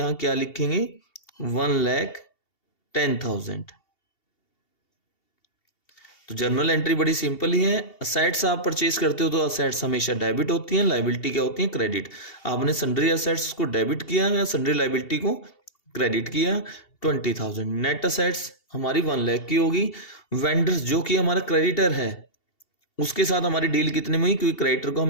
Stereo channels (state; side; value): late; right; 2.7 ms